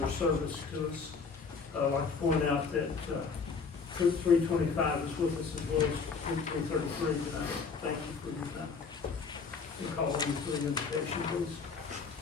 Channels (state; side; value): quieter; right; 5.1 dB